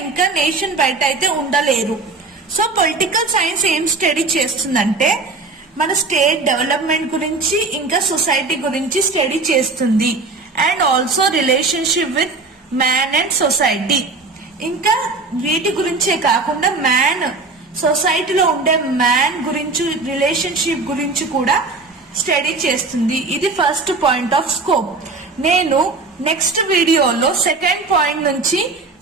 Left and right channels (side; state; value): left; quieter; 3.7 dB